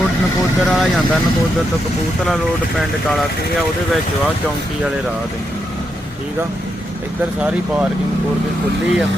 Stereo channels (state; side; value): normal; both; correlation 0.82